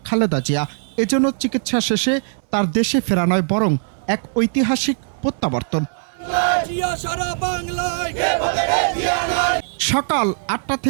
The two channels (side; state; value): left; silent; 63 dB below the other